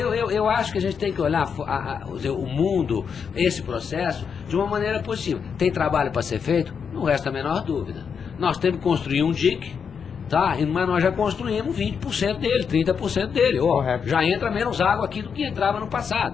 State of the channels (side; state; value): right; quieter; 6.6 dB